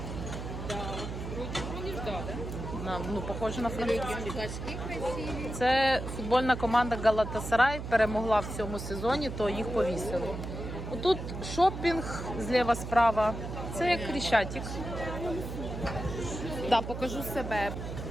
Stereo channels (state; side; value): noise; right; hum, 7 dB below the sound